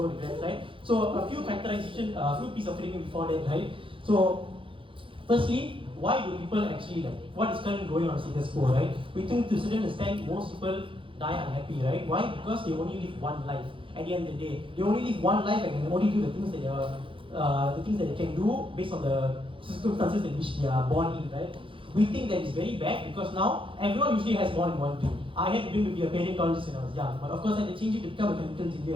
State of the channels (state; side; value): late; left; 0.25 ms